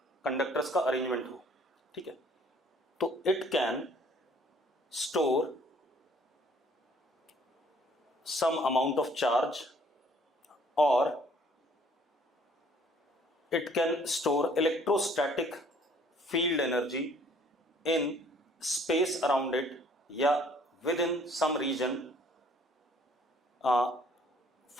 कंडक्टर्स का अरेंजमेंट हो, ठीक है, तो it can store some amount of charge or it can store electrostatic field energy in space around it या within some region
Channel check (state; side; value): normal; both; correlation 0.59